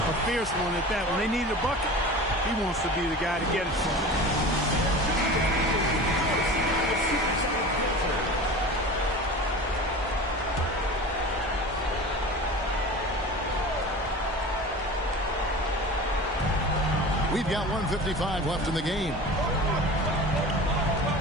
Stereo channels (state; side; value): normal; both; correlation 0.35